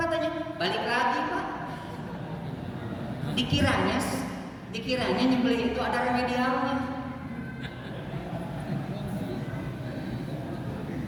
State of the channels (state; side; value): identical; both; correlation 1.00